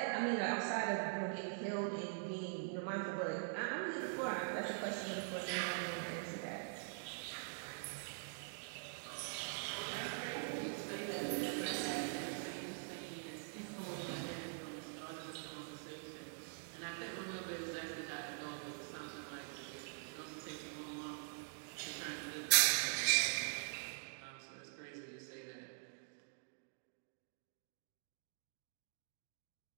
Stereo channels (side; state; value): left; silent; digital silence